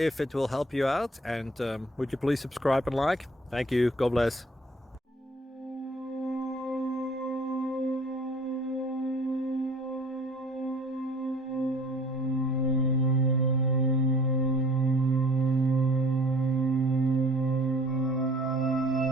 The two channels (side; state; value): both; normal; correlation 0.51